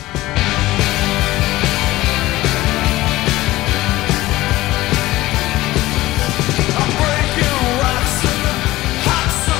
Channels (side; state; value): right; quieter; 17.6 dB